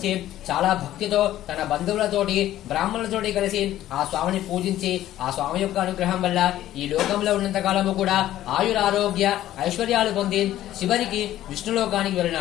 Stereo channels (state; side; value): quieter; right; 13.4 dB